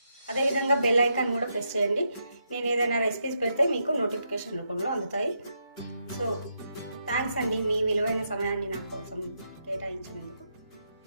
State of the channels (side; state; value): both; inverted; correlation -0.82